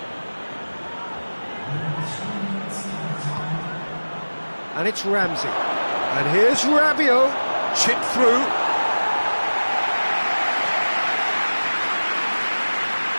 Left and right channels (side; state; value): both; inverted; correlation -1.00